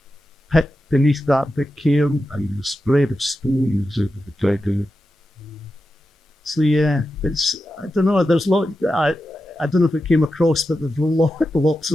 pit beneath that big cairn and the spread of stones over the dragon. So yeah, it's, I don't know, there's I don't know if it came across, but there's lots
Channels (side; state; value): both; normal; correlation 0.90